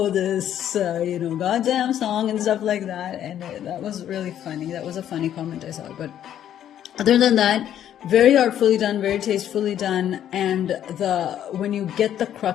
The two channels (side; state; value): right; quieter; 10.6 dB